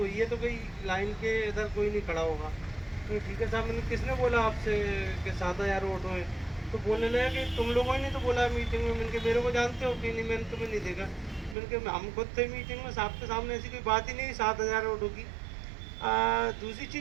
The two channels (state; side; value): drops out; left; at 11.6 s